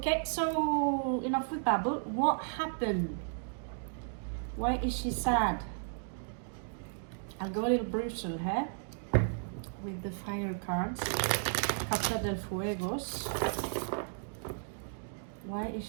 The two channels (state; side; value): silent; left; digital silence